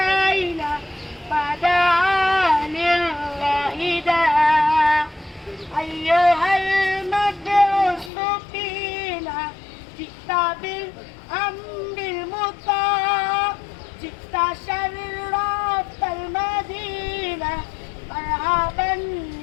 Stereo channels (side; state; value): right; drops out; at 8.1 s